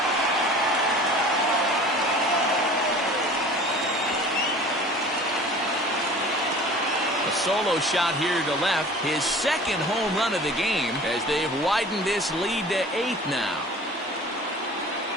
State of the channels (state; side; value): normal; both; correlation 0.43